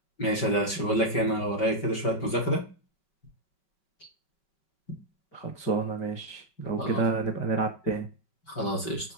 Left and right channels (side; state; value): right; late; 5.2 ms